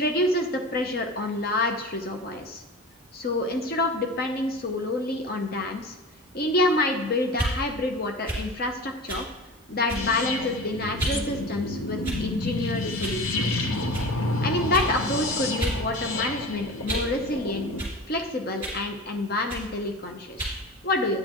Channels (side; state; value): both; normal; correlation 0.33